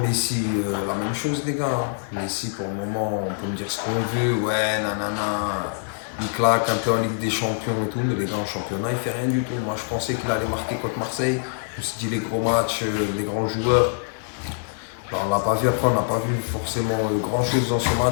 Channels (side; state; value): right; silent; digital silence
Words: la même chose les gars. Messi pour le moment on peut me dire ce qu'on veut. Ouais, nanana. Il claque un peu en Ligue des Champions et tout. Mais les gars en championnat il fait rien du tout. Moi je pensais qu'il allait marquer contre Marseille. Je me suis dit les gros matchs, les grands joueurs. Alors, on l'a pas vu après, on n'a pas vu forcément grand chose dans ce